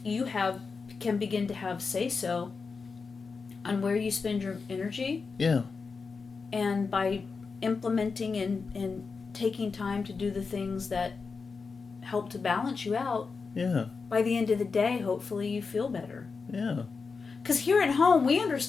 can begin to have say-so on where you spend your energy. Yeah. And by implementing and taking time to do the things that help to balance you out, Yeah. by the end of the day, hopefully you feel better. Yeah. Because here at home, we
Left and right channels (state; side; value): quieter; right; 4.8 dB